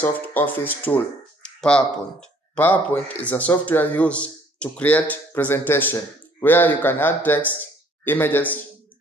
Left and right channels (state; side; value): normal; both; correlation 0.59